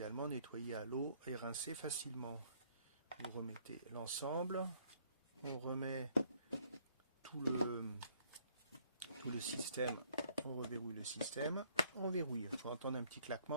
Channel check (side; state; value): both; inverted; correlation -0.64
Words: nettoyer à l'eau et rincer facilement. Vous remettez l'ensemble, on remet tout le système, on reverrouille le système, on verrouille. Il faut entendre un petit